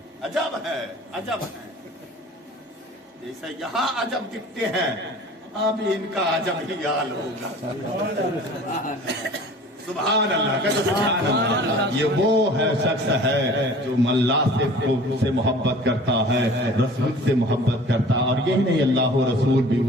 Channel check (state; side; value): normal; both; correlation 0.45